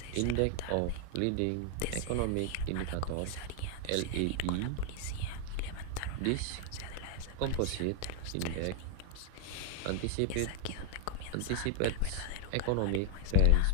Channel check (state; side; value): different; both; correlation 0.00